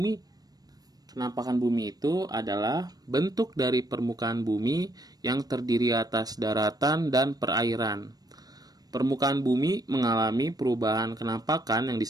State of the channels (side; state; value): left; late; 0.19 ms